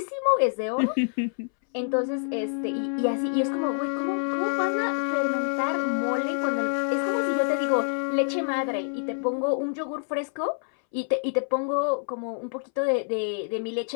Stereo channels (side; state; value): right; silent; 60 dB below the other